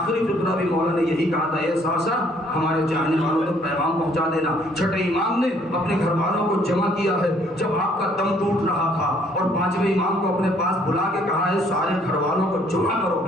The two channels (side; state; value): both; normal; correlation 0.63